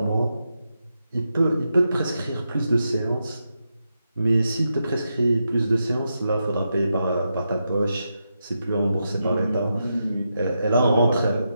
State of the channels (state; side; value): inverted; both; correlation -0.86